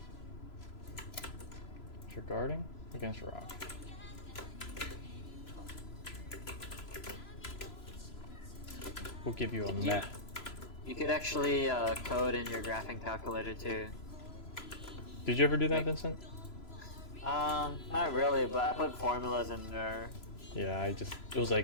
If you're guarding against a rock. We'll give you a meh. You could actually code in your graphing calculator too. Did you ever do that, Vincent? Not really, but I put formulas in there. Yeah, it was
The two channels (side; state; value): right; late; 3.0 ms